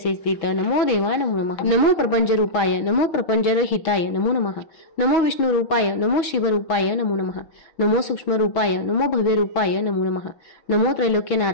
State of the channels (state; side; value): late; right; 6.3 ms